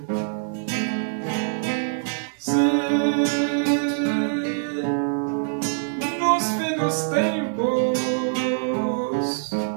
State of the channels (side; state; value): left; silent; digital silence